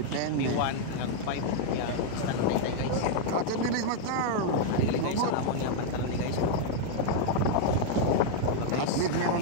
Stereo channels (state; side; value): different; both; correlation 0.00